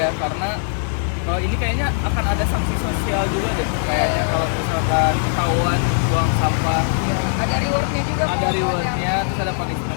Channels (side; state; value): right; silent; digital silence